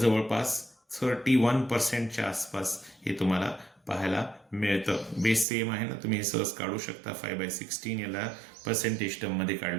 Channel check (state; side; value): drops out; left; at 5.5 s